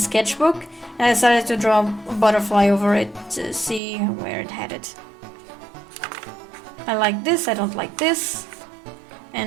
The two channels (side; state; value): left; drops out; at 3.8 s